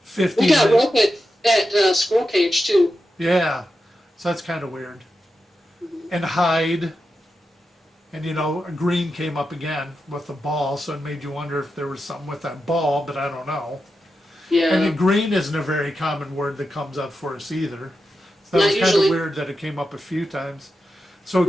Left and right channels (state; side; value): normal; both; correlation 0.89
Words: 15 We got minutes. rope at Squirrel Cage too. Yeah, so that's kind of weird. And hide. And you know, green came up again with the ball, so it made you wonder if there was something with that ball, but I don't know. Yeah. And then green isn't a very common word that comes up for us either. So that Not was kind usually. of weird that it came up a few times. So